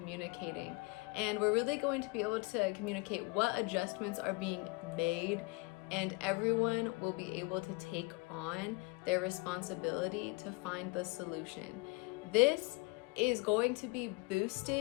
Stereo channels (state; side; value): quieter; right; 26.8 dB